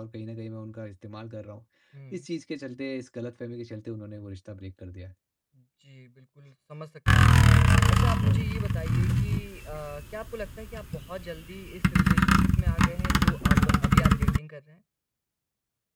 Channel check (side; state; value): both; identical; correlation 1.00